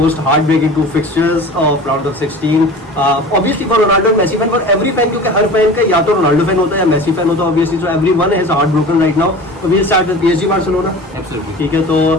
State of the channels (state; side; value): normal; both; correlation 0.37